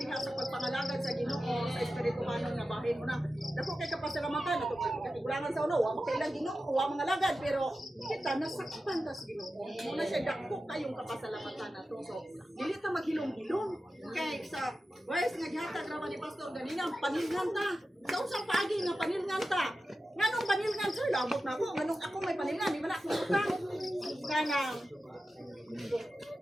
sa pagpangalagad sa Ginoo sa espirituhanong nga bahin mo na. Dako kay kapasalamatan ato katigulangan sa ulo, wa makailang Ginoo, wa mga lagad pero kita nasaktan ta sa Ginoo. Muna siya dako kayong kapasalamatan nato. So dili ta maghilom-hilom kay sa verse nga gihatag ra ni Pastor ganina panilngan ta. Sa unsang paagi nga panilngan ta. Nganong panilngan sir labot na ako, nganong ako may panilngan, di man ako utang. Kanang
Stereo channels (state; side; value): normal; both; correlation 0.93